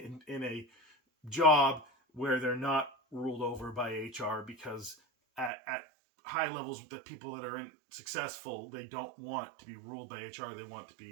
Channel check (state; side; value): drops out; left; at 5.5 s